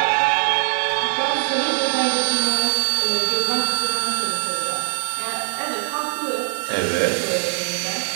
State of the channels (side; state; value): left; silent; 65 dB below the other